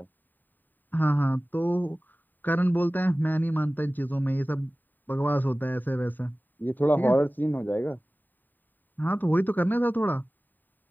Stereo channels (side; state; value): right; late; 0.089 ms